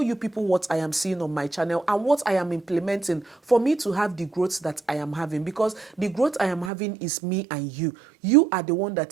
you people what I am seeing on my channel and what I am implementing for me to have the growth that I am having, because the growth I am having is me and you. You are the one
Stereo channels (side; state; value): left; drops out; at 6.7 s